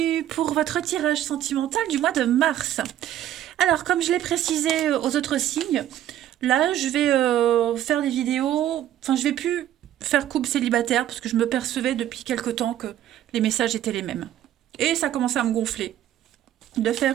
pour votre tirage sentimental du mois de mars. Alors, comme je l'ai précisé aux autres signes, là, je vais faire des vidéos. Enfin, je vais plus faire couple célibataire parce que je me percevais depuis quelque temps que les messages étaient les mêmes. Et ça commençait à me gonfler de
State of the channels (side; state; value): left; quieter; 12.0 dB